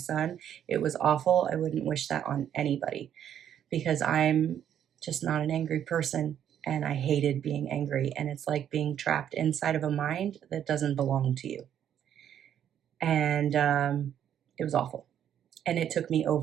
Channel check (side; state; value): left; quieter; 9.8 dB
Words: It was awful. I wouldn't wish that on anybody because I'm just not an angry person, and I hated being angry. And it's like being trapped inside of a mind that doesn't belong to you. And it was awful. And it took me